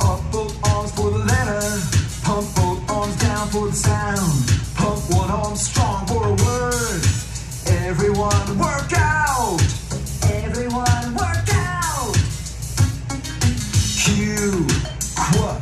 up both arms for the letter. Pump both arms down for the sound. Pump one arm strong for a word. Everyone work out. Everyone work out. Q,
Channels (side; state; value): both; identical; correlation 1.00